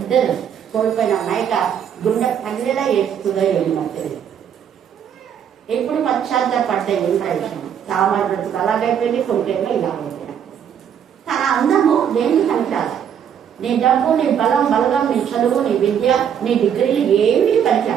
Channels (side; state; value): left; quieter; 8.6 dB